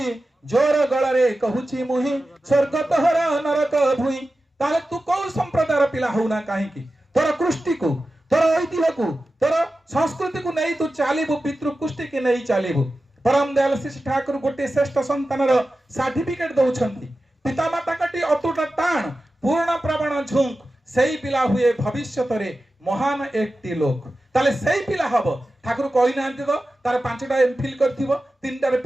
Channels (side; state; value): both; normal; correlation 0.94